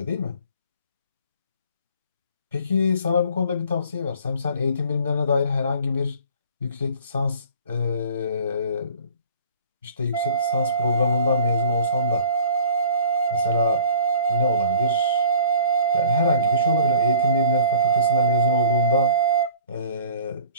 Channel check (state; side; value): inverted; both; correlation -0.47